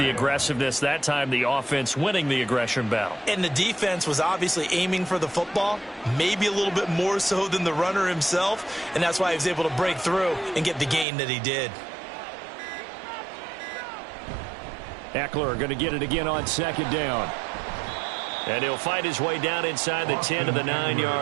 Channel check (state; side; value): drops out; left; at 11.1 s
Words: aggressiveness. That time the offense winning the aggression battle. And the defense was obviously aiming for the football, maybe a little bit more so than the runner himself, and that's why he was able to break through and get the gain that he did. Eckler going to get it again on second down. And he'll fight his way down inside the 10 to the